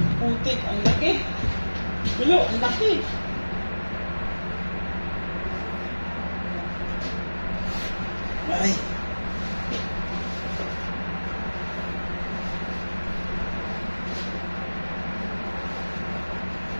putik, ang laki. Bilo, ang laki. Ay.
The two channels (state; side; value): inverted; both; correlation -1.00